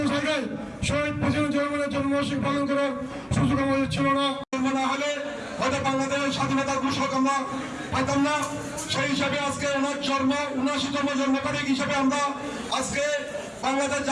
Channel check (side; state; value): both; identical; correlation 1.00